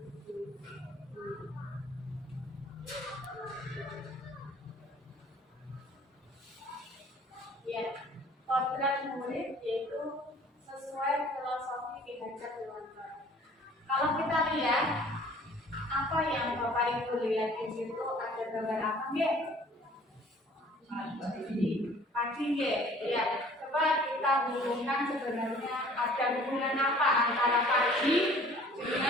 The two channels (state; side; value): normal; both; correlation 0.52